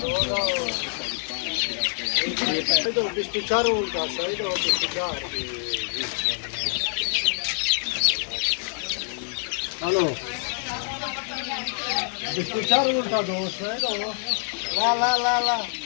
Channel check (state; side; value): silent; right; 59 dB below the other